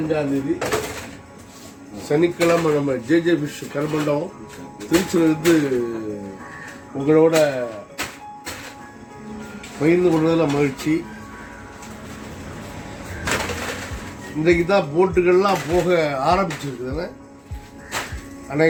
தேதி சனிக்கிழமை நம்ம ஜேஜே ஃபிஷ் கருமண்டபம் திருச்சியிலிருந்து உங்களோட பகிர்ந்து கொள்வதில் மகிழ்ச்சி. இன்றைக்கு தான் போட்டுகள்லாம் போக ஆரம்பிச்சிருக்குதுன்னு,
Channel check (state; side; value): identical; both; correlation 1.00